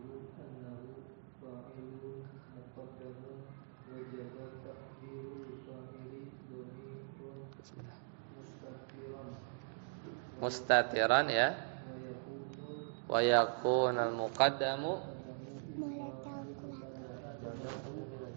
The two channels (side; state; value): left; silent; digital silence